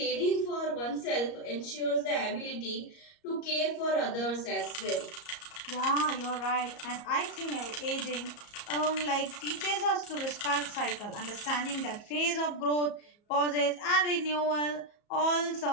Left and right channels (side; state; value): right; late; 34 ms